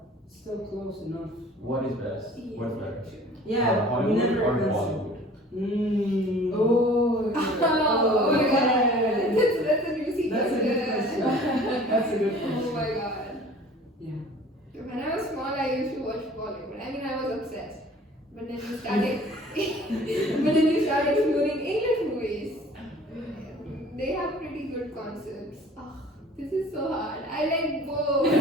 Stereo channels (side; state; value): both; normal; correlation 0.49